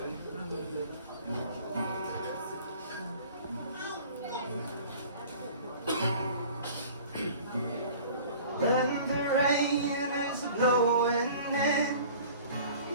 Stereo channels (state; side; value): inverted; both; correlation -0.46